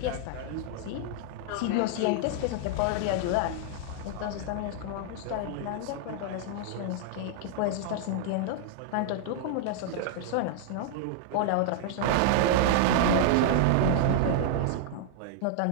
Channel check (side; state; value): both; different; correlation -0.01